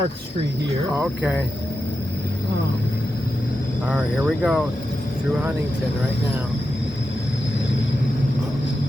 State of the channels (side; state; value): both; normal; correlation 0.89